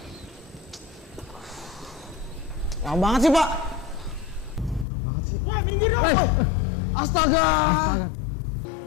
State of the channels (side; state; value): right; drops out; at 4.9 s